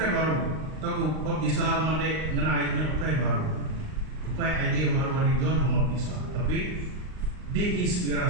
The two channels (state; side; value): late; left; 39 ms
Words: baru. Tahu kau bisa mandek ngenaiknya ukai baru. Ukai idea baru dari John mau bisa. Tapi